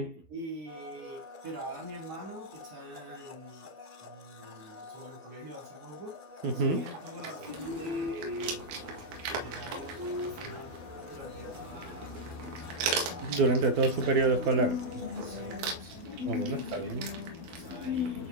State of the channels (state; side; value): late; left; 12 ms